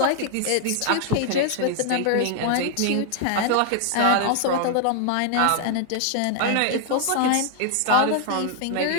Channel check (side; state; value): both; different; correlation 0.00